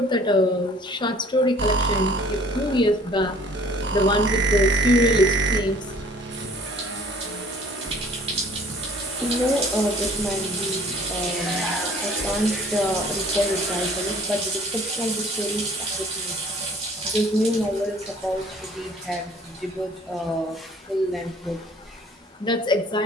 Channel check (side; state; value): both; normal; correlation 0.54